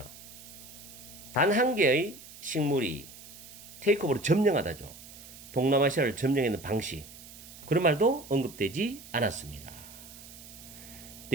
단 한 개의 식물이 테이크오버를 점령하다죠. 동남아시아를 점령하는 방식. 그런 말도 언급되지 않았습니다.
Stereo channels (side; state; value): right; noise; hiss, 17 dB below the sound